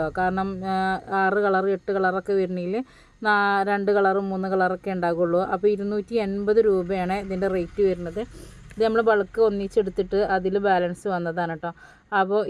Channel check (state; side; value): identical; both; correlation 1.00